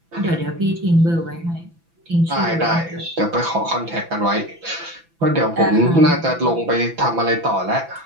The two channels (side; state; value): left; late; 6.0 ms